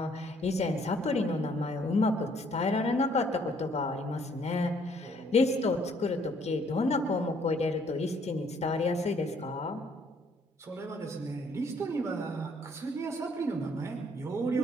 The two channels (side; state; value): both; normal; correlation 0.64